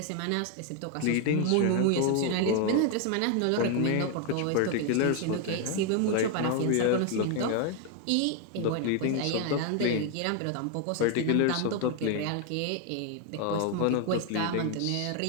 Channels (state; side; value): different; both; correlation 0.01